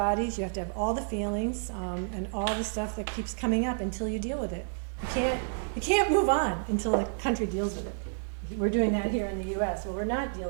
you have to have all the feelings and all the stuff that keeps coming up until you deal with it. You can't move on until the country deals with it. We're doing that here in the U.S. Well, we're not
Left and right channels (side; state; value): left; silent; 58 dB below the other